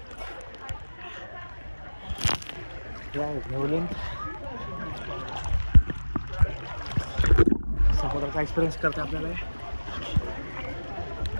समुद्राचा एक्सपिरियन्स करते आपल्याला.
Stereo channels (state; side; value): inverted; both; correlation -1.00